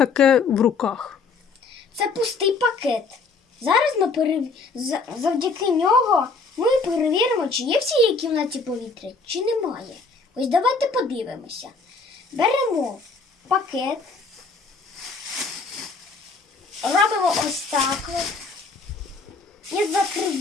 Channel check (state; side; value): quieter; right; 4.3 dB